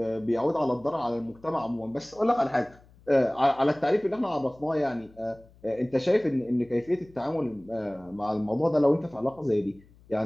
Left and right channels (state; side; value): noise; left; hum, 27 dB below the sound